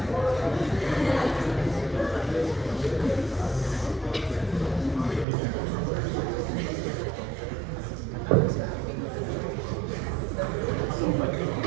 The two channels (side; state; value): left; drops out; at 5.2 s